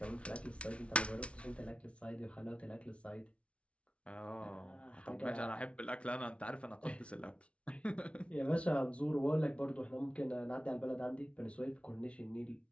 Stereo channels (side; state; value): right; late; 0.061 ms